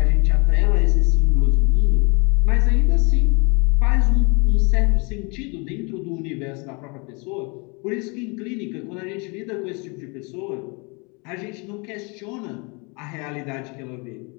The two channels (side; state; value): right; quieter; 31.1 dB